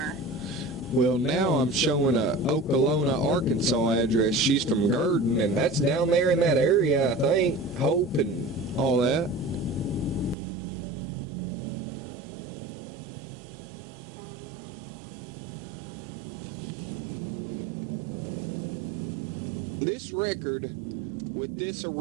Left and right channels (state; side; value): drops out; left; at 10.4 s